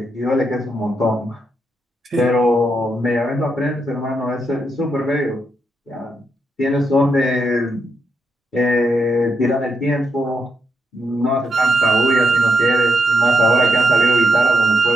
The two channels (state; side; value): normal; both; correlation 0.81